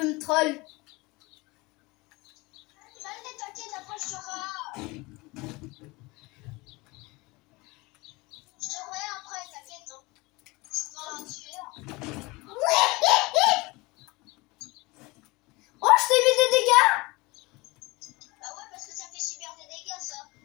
me troll. Allez, t'inquiète, après je serai... Je te reverrai après, t'inquiète. Hein. Je suis pas un tueur. Oh, je t'ai mis des dégâts. Bah ouais, parce que ça fait super des dégâts, ça.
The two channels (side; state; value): right; quieter; 23.6 dB